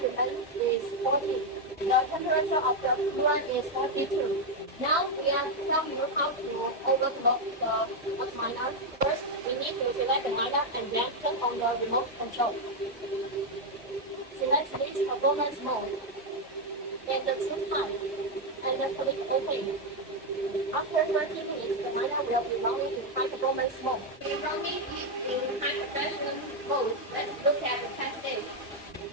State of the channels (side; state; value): both; normal; correlation 0.02